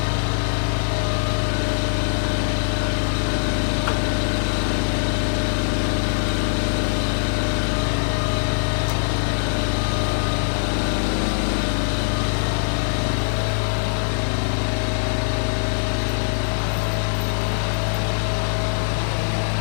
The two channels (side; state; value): right; silent; digital silence